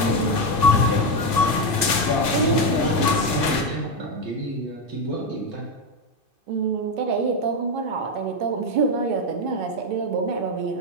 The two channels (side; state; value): left; late; 2.2 ms